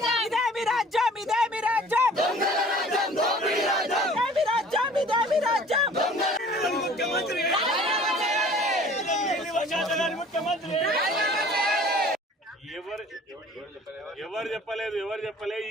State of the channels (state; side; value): normal; both; correlation 0.49